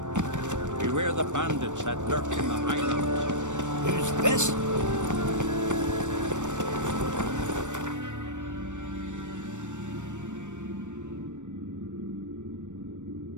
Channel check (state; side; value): late; left; 0.85 ms